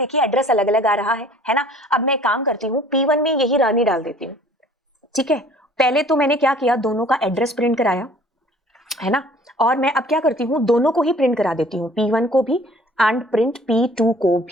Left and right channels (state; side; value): normal; both; correlation 0.52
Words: एड्रेस अलग अलग आ रहा है ना। अब मैं काम करती हूँ, P1 में यही रानी डाल देती हूँ, ठीक है। पहले तो मैंने क्या किया, दोनों का एड्रेस प्रिंट कराया, है ना। और मैं अब क्या करती हूँ, दोनों को ही प्रिंट करा देती हूँ, P1 को भी एंड प्रिंट P2 को